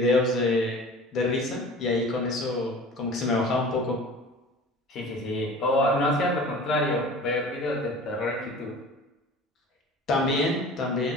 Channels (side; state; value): both; normal; correlation 0.41